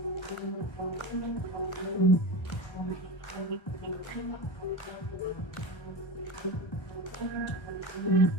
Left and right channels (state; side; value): late; right; 1.1 ms